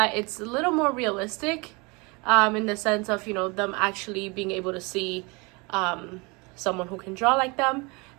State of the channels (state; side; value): quieter; left; 27.7 dB